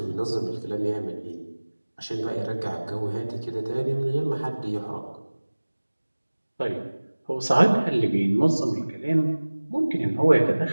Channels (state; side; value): inverted; both; correlation -1.00